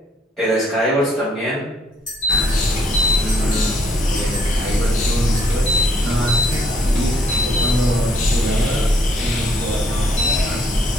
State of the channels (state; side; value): normal; both; correlation 0.67